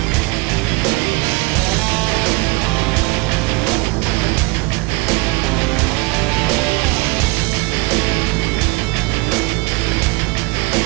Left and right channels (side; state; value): left; quieter; 25.7 dB